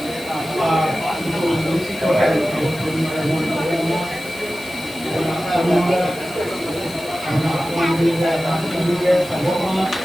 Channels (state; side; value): noise; left; hiss, 19 dB below the sound